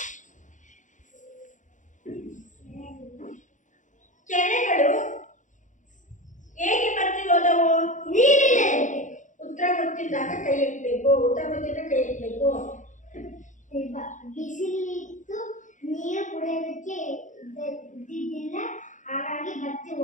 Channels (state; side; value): late; right; 0.36 ms